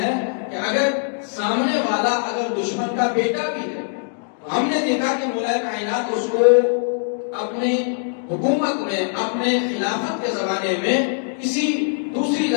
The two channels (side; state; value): right; silent; 64 dB below the other